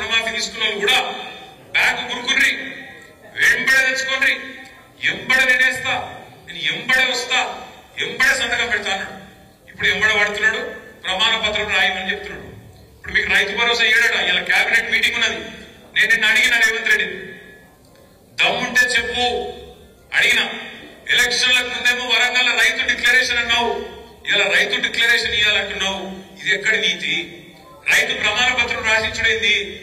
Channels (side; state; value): both; identical; correlation 1.00